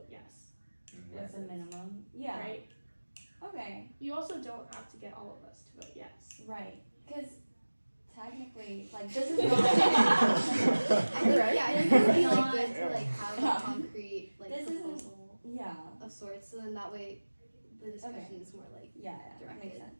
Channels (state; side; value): inverted; both; correlation -1.00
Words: yes, What's the minimum? Yeah. right? Okay. You also don't have to get all of us to vote yes. Right. Because technically, like, this is not. I think, Right. yeah, I think it would be like Not- good to like have Yeah. a concrete like This isn't- proposal Yeah. of sorts, so then that way the discussion is more like Yeah, that Directed. makes sense.